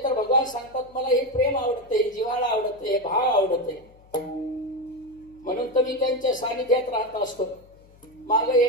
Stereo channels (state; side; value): noise; left; hum, 27 dB below the sound